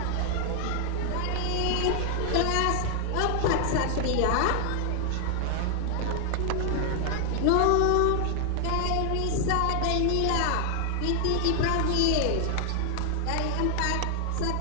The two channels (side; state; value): both; different; correlation 0.00